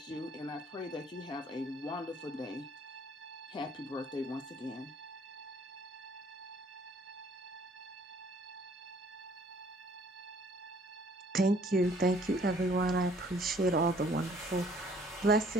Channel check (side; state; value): both; normal; correlation 0.59